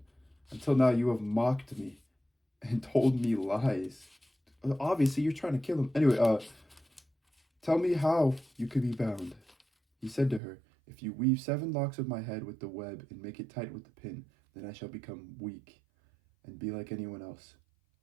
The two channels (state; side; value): drops out; left; at 10.4 s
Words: "Until now you have mocked me and told me lies. Obviously, you're trying to kill him. Anyway, tell me how you could be bound." He said to her, "If you weave 7 locks of my head with the web and make it tight with the pin, then I shall become weak and be like anyone else."